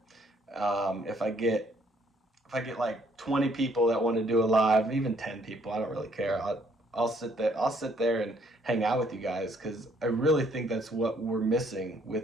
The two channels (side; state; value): both; normal; correlation 0.66